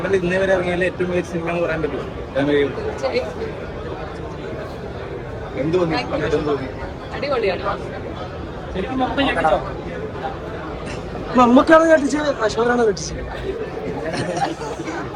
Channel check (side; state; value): both; identical; correlation 1.00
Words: ഇന്നേ വരെ ഇറങ്ങിയാലും ഏറ്റവും മികച്ച സിനിമ എന്ന് പറയാൻ പറ്റും. എന്ത് തോന്നി? ശരിക്കും മമ്മൂക്കാണ് കെട്ടിച്ചത്, അശോകനാണ് കെട്ടിച്ചത്.